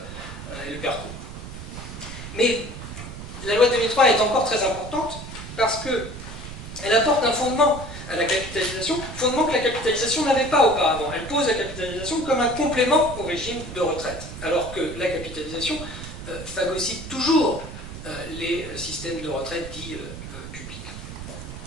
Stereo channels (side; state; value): right; noise; rumble, 11 dB below the sound